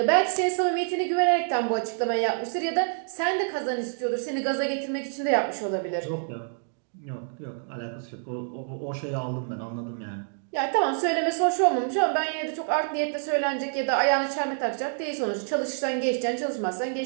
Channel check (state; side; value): silent; left; digital silence